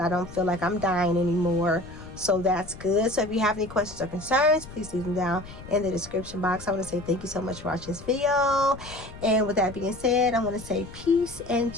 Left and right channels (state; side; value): noise; left; rumble, 16 dB below the sound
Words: don't feel like I'm dying anymore. So that's good. So if you have any questions or concerns, please leave them down in the description box. I want to say thank you so much for watching this video. And with that being said, I want to say peace and